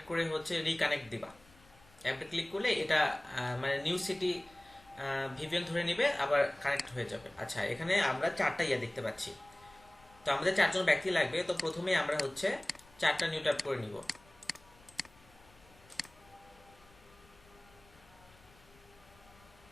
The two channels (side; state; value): left; noise; rumble, 27 dB below the sound